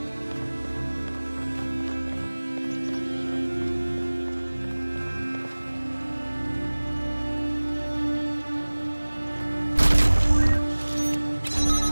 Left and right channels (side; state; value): both; inverted; correlation -1.00